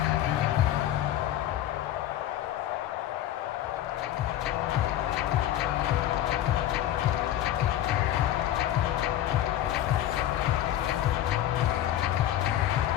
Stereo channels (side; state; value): right; quieter; 12.4 dB